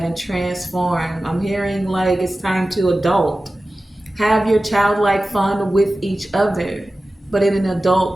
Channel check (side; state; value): both; normal; correlation 0.96